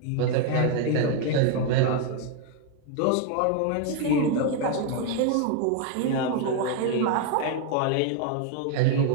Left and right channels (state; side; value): different; both; correlation 0.01